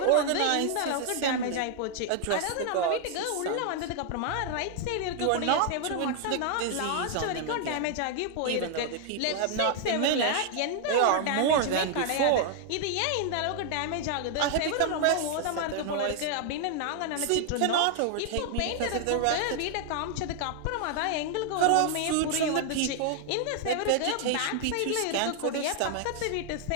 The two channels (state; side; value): different; both; correlation 0.00